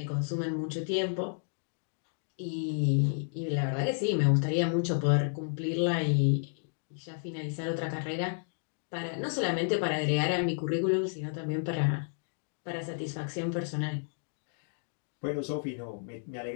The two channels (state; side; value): silent; right; digital silence